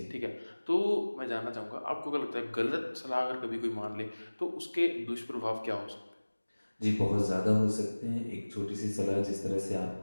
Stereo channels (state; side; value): inverted; both; correlation -1.00